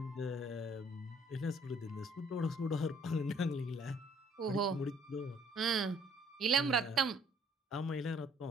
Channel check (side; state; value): both; normal; correlation 0.61